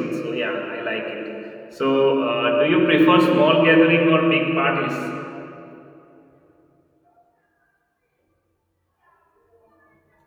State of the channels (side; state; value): both; identical; correlation 1.00